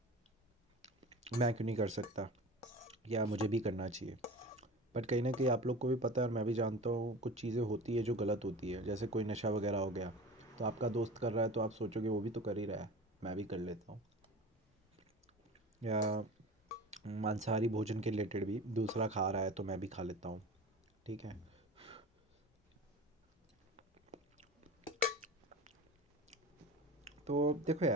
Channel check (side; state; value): both; normal; correlation 0.35